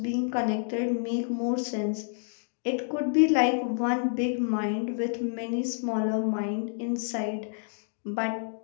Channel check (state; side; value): silent; right; digital silence